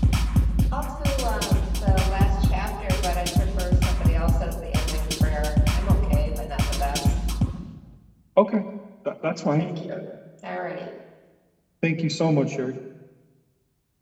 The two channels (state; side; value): identical; both; correlation 1.00